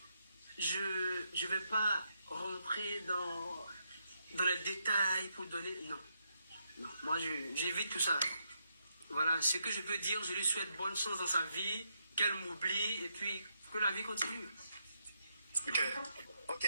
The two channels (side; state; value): both; inverted; correlation -0.79